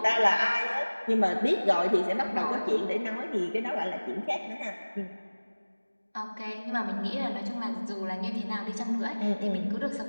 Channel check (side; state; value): both; inverted; correlation -1.00